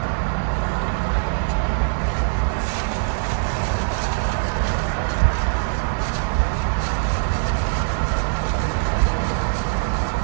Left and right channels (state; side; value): silent; left; 55 dB below the other